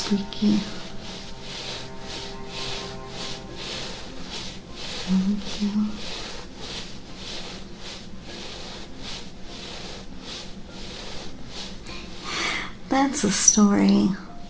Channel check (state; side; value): identical; both; correlation 1.00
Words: Thank you. That's a story.